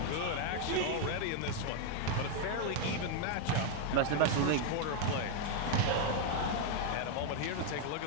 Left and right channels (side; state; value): both; different; correlation 0.01